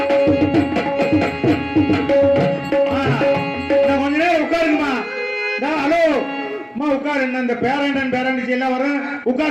இந்த பேரண்டன் பேரண்டிச்சு எல்லாம் வரும்,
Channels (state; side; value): identical; both; correlation 1.00